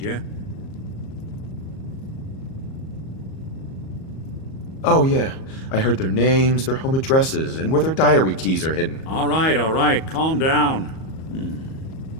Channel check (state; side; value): late; right; 37 ms